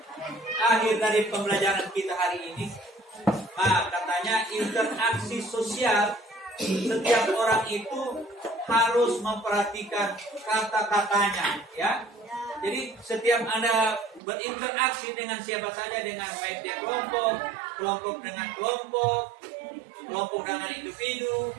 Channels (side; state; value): left; drops out; at 14.2 s